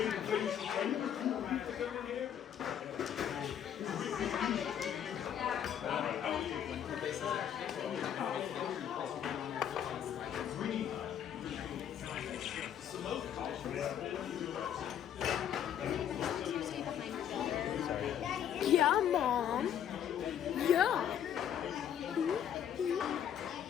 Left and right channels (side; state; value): right; quieter; 9.5 dB